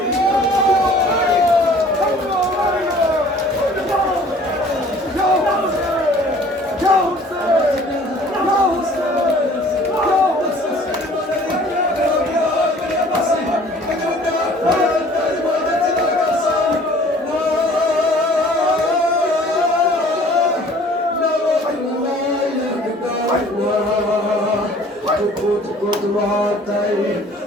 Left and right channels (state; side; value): normal; both; correlation 0.51